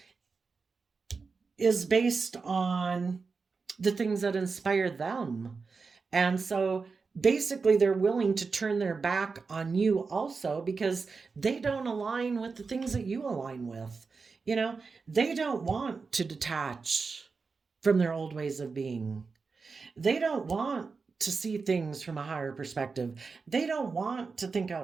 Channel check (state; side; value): quieter; left; 4.7 dB